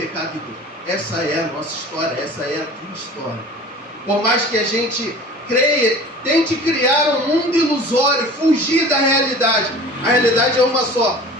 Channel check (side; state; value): both; normal; correlation 0.41